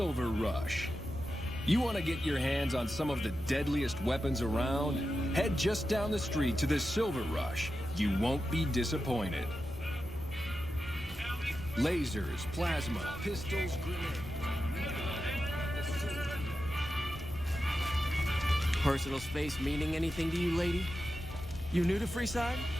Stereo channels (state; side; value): normal; both; correlation 0.90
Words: Rush. You want to get your hands on some of the deadliest weapons around? Head just down the street to the Silver Rush. You won't be disappointed. Lasers, plasma, pistols, grenades. Personal space meaning anything to you, lady? You new to Freeside?